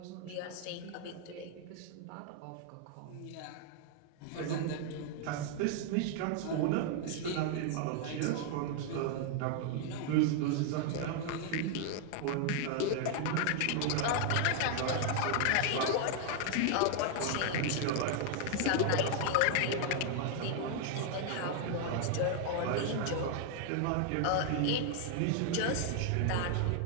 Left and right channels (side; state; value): both; different; correlation 0.00